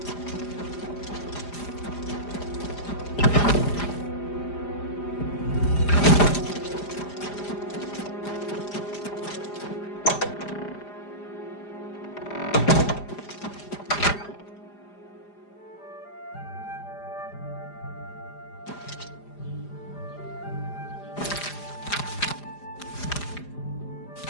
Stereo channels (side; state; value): right; late; 4.9 ms